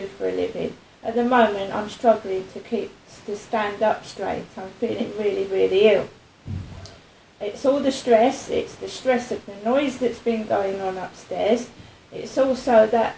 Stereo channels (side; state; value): both; identical; correlation 1.00